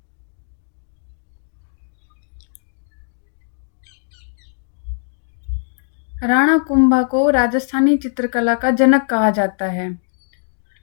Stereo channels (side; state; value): right; silent; 65 dB below the other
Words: राणा कुंभा को राजस्थानी चित्रकला का जनक कहा जाता है।